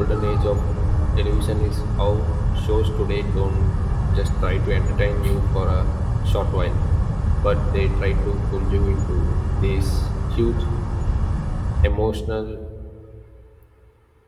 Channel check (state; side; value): identical; both; correlation 1.00